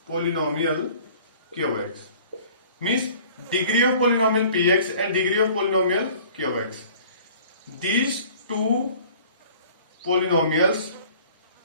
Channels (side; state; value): both; inverted; correlation -0.49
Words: polynomial qx, means degree of polynomial px and degree of polynomial qx. These two polynomials